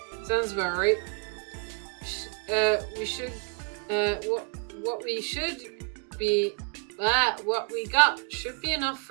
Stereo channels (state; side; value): quieter; left; 39.6 dB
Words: Sounds about right. What we got should be enough